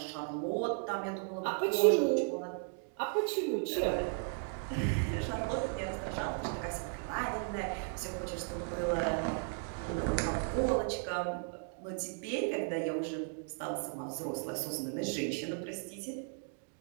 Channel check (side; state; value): left; silent; 54 dB below the other